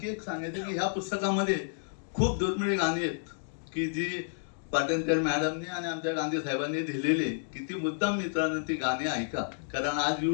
एक सांगायचं की ह्या पुस्तकामध्ये खूप दुर्मिळ गाणी आहेत की जी पाटणकर मॅडमने आणि आमच्या गांधी साहेबांनी दिलेली, किती मुद्दाम मित्रांनो ती गाणी ऐका, कारण आज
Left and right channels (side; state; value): right; silent; digital silence